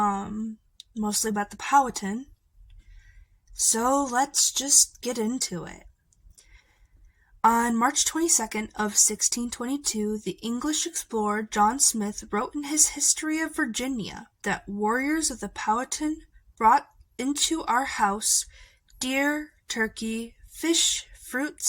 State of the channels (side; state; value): both; identical; correlation 1.00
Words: about the Powhatan. So let's just get into it. On March 22nd of 1622, the English explorer John Smith wrote in his History of Virginia that warriors of the Powhatan brought into our house deer, turkey, fish,